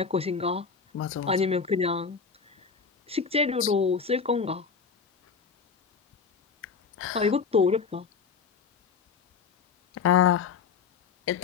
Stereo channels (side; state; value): right; quieter; 5.7 dB